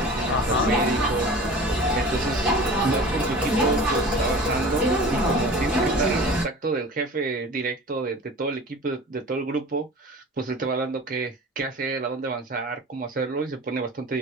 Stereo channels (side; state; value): both; normal; correlation 0.39